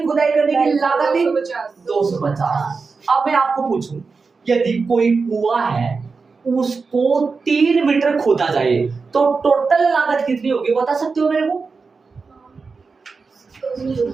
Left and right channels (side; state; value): left; quieter; 4.6 dB